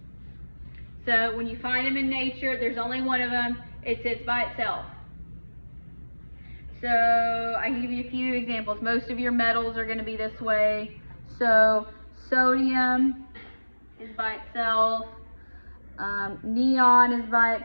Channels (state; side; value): inverted; both; correlation -1.00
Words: So when you find them in nature, there's only one of them. It sits by itself. So I can give you a few examples. Most of your metals are going to be this way. So sodium is by itself. Neon is by